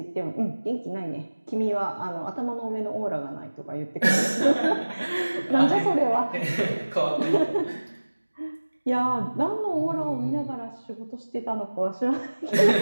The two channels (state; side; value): inverted; both; correlation -1.00